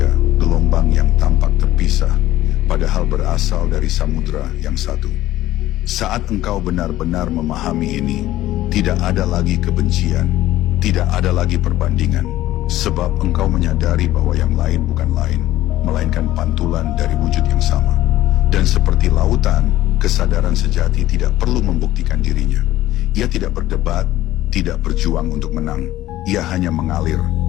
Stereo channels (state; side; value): quieter; right; 14.9 dB